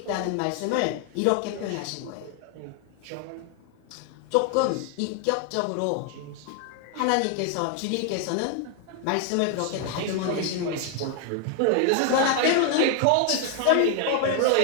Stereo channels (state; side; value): different; both; correlation 0.00